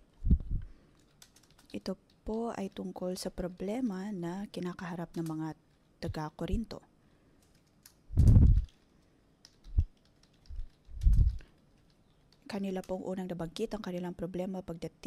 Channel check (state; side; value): identical; both; correlation 1.00